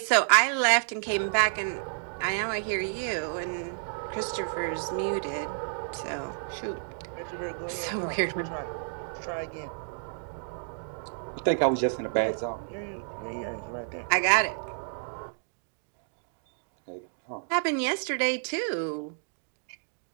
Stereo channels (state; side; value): silent; left; digital silence